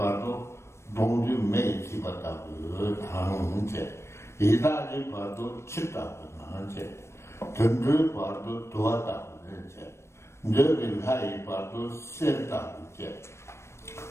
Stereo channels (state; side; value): late; right; 0.13 ms